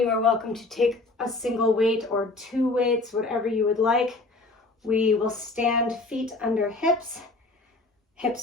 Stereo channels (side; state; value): right; quieter; 3.3 dB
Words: are welcome to take a single weight or 2 weights, whatever you would like. We will stand feet under hips,